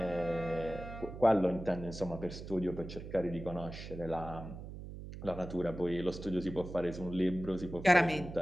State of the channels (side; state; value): right; noise; hum, 11 dB below the sound